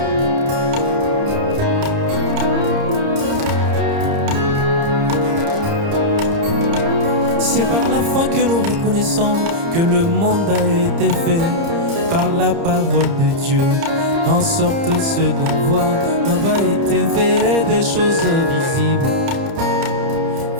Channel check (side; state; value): left; late; 30 ms